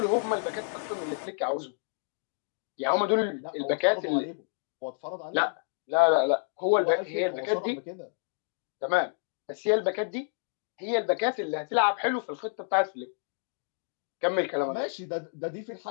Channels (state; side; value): silent; right; digital silence